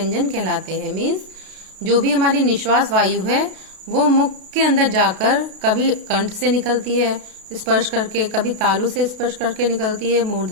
कहलाते हैं। मीन्स जो भी हमारी निश्वास वायु है वो मुख के अंदर जाकर कभी कंठ से निकलती है स्पर्श करके, कभी तालु से स्पर्श करके निकलती है,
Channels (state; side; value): late; left; 32 ms